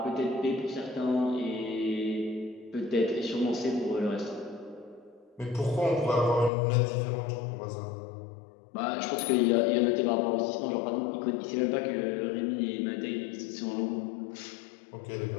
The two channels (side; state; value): right; drops out; at 6.5 s